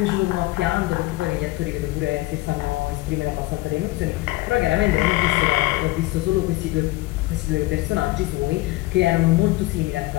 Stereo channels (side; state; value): right; quieter; 20.1 dB